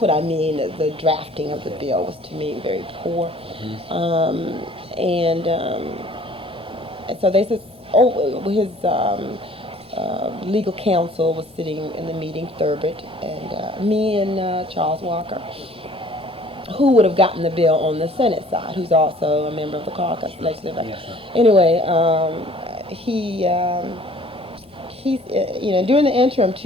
I mean, the drafting of the bill was, to me, very poor. And so they said, his legal counsel was sitting in the meeting, Thurbet, and me and Charles Walker, who would have gotten the bill on the Senate side, who's also a member of the caucus. Anyway, he's, during the interim,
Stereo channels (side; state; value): both; normal; correlation 0.53